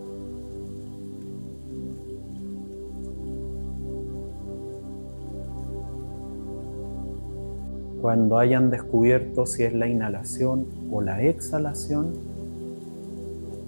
Cuando hayan descubierto si es la inhalación o la exhalación,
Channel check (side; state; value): both; inverted; correlation -1.00